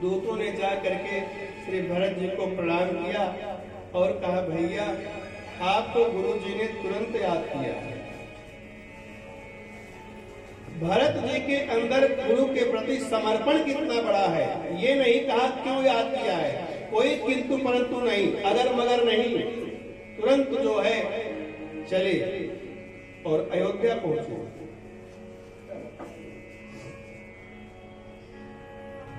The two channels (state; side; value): identical; both; correlation 1.00